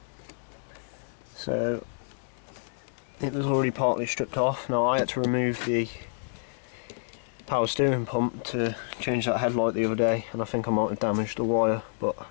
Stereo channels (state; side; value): silent; right; digital silence